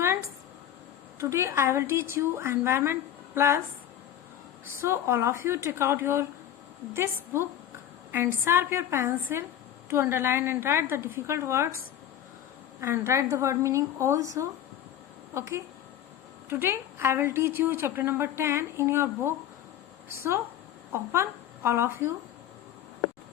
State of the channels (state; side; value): quieter; right; 10.9 dB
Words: today I will teach you Environment Plus. So all of you take out your this book and sharp your pencil to underline and write the difficult words and write the word meaning also. Okay. Today I will teach you chapter number 10 in your book. So open all of you.